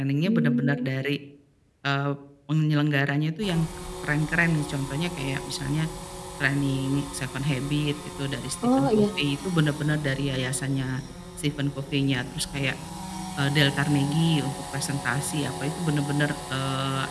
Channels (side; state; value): both; identical; correlation 1.00